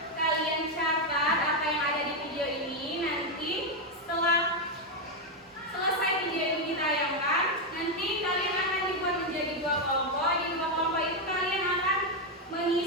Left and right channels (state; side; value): normal; both; correlation 0.04